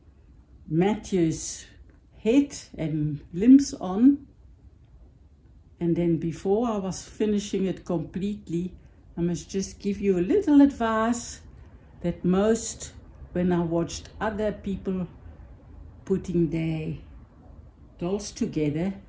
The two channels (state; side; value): identical; both; correlation 1.00